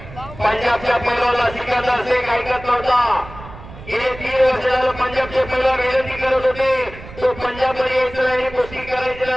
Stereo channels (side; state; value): right; noise; rumble, 15 dB below the sound